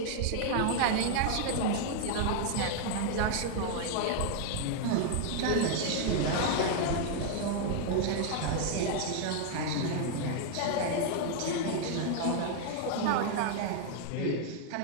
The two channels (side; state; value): both; different; correlation 0.00